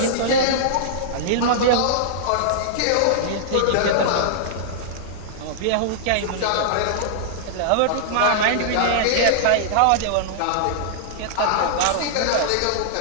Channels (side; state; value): both; different; correlation -0.01